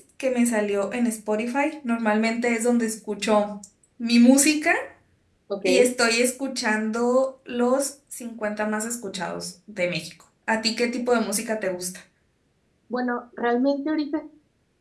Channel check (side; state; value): both; identical; correlation 1.00